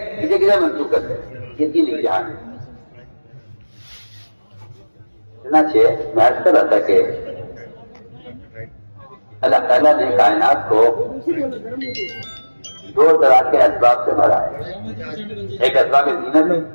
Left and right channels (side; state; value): both; inverted; correlation -1.00